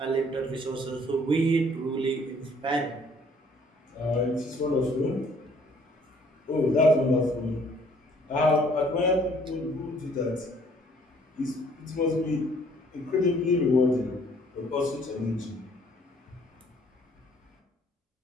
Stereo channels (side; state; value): both; normal; correlation 0.60